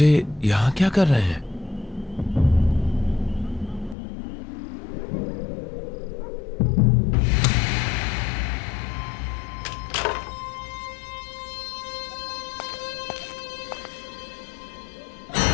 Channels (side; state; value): right; drops out; at 4.0 s